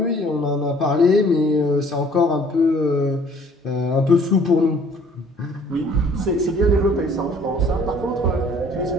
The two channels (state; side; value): normal; both; correlation 0.56